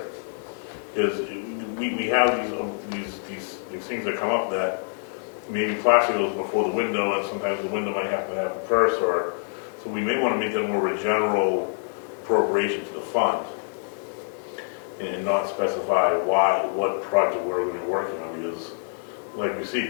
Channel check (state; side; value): silent; right; 61 dB below the other